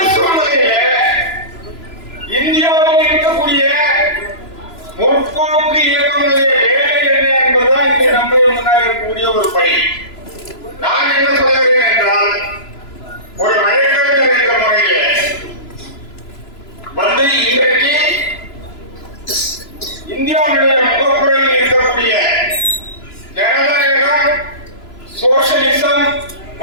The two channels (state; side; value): late; right; 3.0 ms